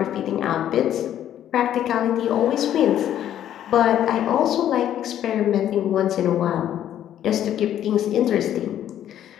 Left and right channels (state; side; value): quieter; right; 11.0 dB